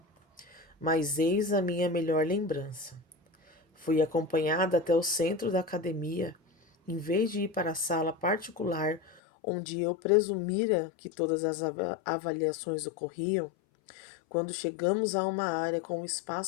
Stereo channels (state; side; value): drops out; right; at 9.2 s